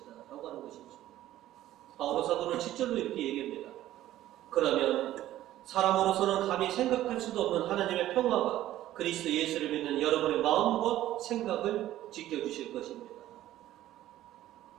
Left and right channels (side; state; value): left; quieter; 13.8 dB